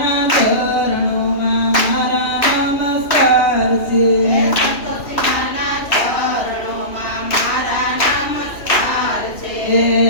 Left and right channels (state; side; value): late; right; 2.9 ms